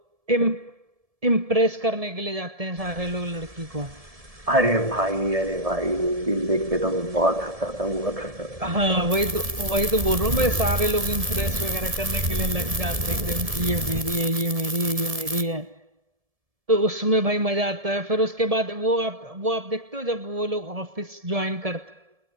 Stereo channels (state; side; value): late; left; 1.7 ms